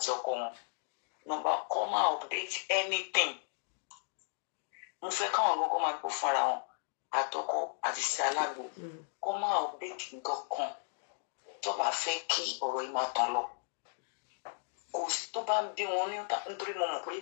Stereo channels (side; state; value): right; silent; digital silence